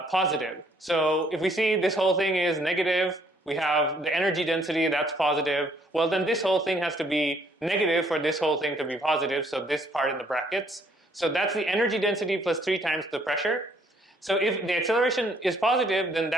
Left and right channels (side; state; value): both; normal; correlation 0.65